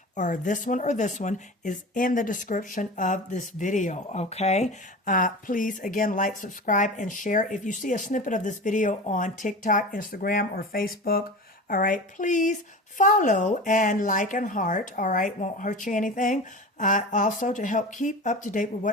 or this one is in the description of this video. Okay. Please, again, like, subscribe, and share. If you see a snippet of this video on TikTok, Instagram, or Facebook, all right, please follow and like and heart. All right. Won't hurt you anything. Also to help keep up to date with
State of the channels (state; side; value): normal; both; correlation 0.32